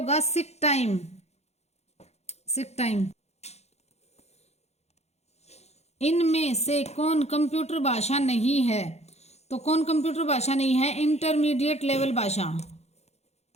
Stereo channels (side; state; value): right; late; 0.31 ms